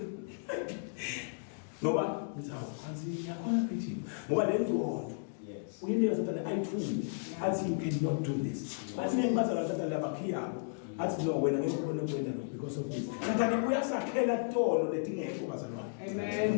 ngoba ngizawo kanzi yakhona phithi ngoba lengcondo uyinike sathana ayithuli athi you cannot do this bathi ngibazala sathana labaphiyabo athi no wena ngeke ubone kwenda lo because of this sathana uyasakhela tono letingekho bazalwane amen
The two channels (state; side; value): silent; right; digital silence